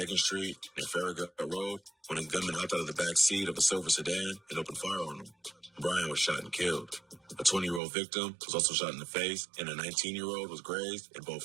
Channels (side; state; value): left; drops out; at 7.8 s